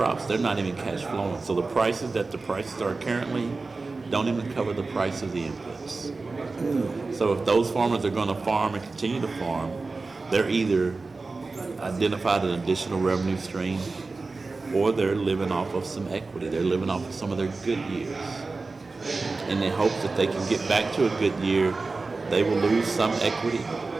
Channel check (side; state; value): left; quieter; 3.8 dB